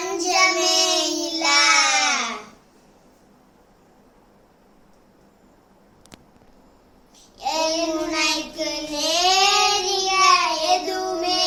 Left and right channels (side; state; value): both; identical; correlation 1.00